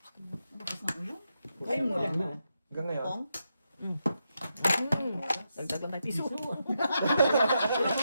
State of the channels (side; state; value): both; inverted; correlation -0.85